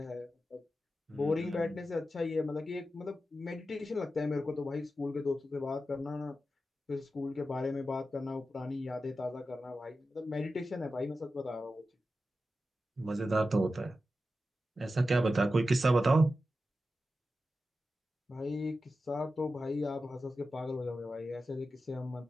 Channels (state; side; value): normal; both; correlation 0.91